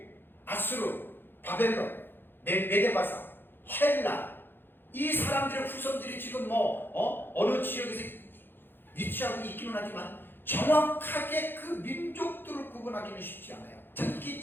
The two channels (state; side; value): late; right; 0.10 ms